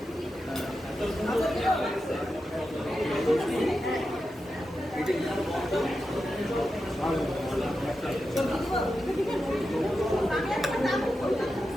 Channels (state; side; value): normal; both; correlation 0.90